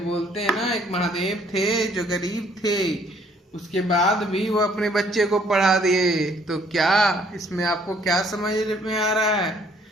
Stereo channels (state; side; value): normal; both; correlation 0.62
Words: हैं ना, एक महादेव थे जो गरीब थे, उसके बाद भी वो अपने बच्चे को पढ़ा दिए। तो क्या इसमें आपको क्या समझ में आ रहा है?